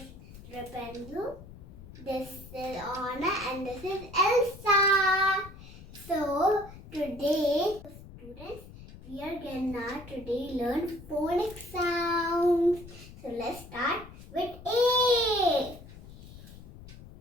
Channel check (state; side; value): noise; left; rumble, 17 dB below the sound